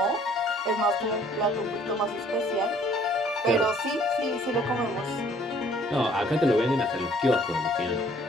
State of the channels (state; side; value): normal; both; correlation 0.59